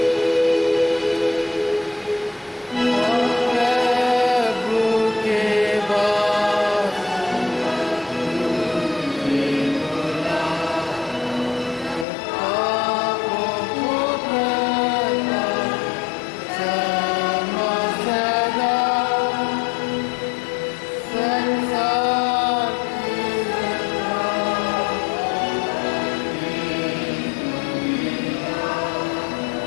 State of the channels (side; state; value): right; drops out; at 12.1 s